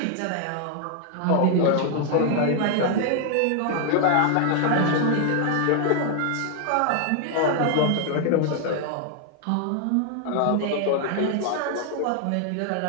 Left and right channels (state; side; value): different; both; correlation 0.00